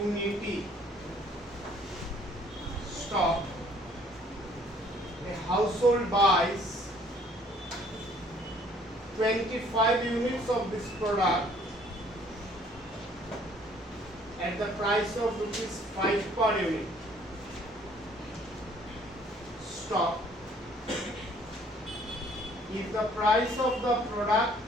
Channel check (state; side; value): normal; both; correlation 0.59